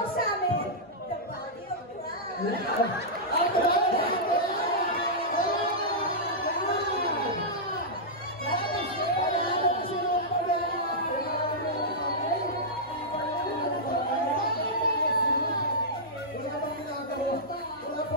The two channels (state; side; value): normal; both; correlation -0.12